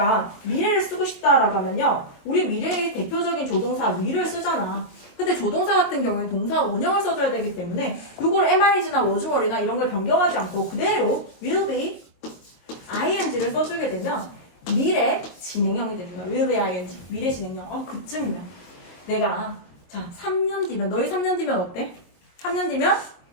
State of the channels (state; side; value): late; right; 22 ms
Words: 미래를 쓰고 싶다라고 하면요. 우리 미래의 대표적인 조동사 will을 쓰잖아. 근데 조동사 같은 경우에 동사 원형을 써줘야 되기 때문에 이걸 am, is나 was, were나 이런 걸 변경하지 않고 그대로 will be ing를 써주게 되면 미래 진행형이 됩니다. will be ing. 미래 진행형. 그쯤이면 내가 자 3년 뒤면 너희 3년 뒤면 어때? 3년 뒤면